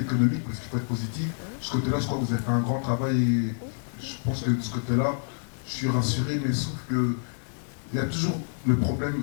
parce qu'il faut être positif. De ce côté-là, je crois que vous avez fait un grand travail et je pense que de ce côté-là, je suis rassuré, mais sauf que il y a toujours le problème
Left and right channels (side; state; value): right; silent; digital silence